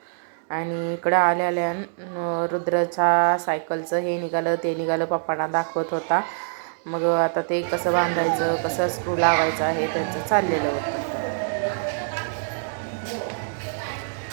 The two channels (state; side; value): silent; left; digital silence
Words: आणि इकडं आल्या रुद्राच्या सायकलचं हे निघालं ते निघालं, पप्पांना दाखवत होता. मग आता ते कसं बांधायचं, कसं स्क्रू लावायचं आहे त्यांचं चाललेलं होतं.